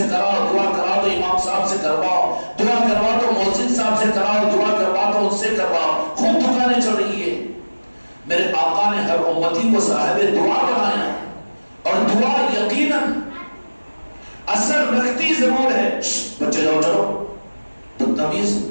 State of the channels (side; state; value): both; inverted; correlation -1.00